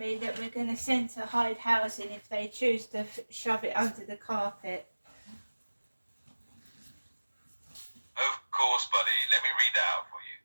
that we're going to send to Hyde Housing if they choose to shove it under the carpet? Of course, buddy. Let me read that out for you.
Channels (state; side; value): inverted; both; correlation -1.00